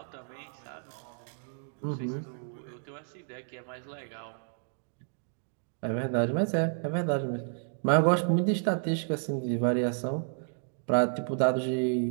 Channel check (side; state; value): left; silent; digital silence